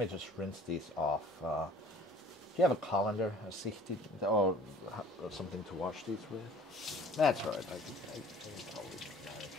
just rinse these off. Do you have a colander, a sihti, or something to wash these with? That's right. I can totally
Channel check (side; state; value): both; normal; correlation 0.50